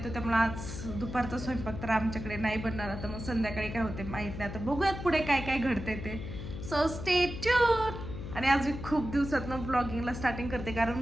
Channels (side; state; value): left; noise; hum, 8 dB below the sound